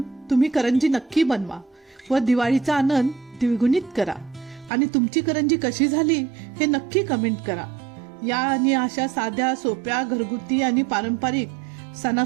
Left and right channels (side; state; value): left; drops out; at 4.7 s